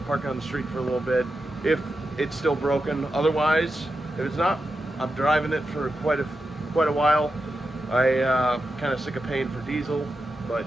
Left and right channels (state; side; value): normal; both; correlation 0.89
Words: park it on the street for a little bit, if it's still broken. Otherwise, if it's not, I'm driving it for quite a while. I kind of sick of paying for diesel, but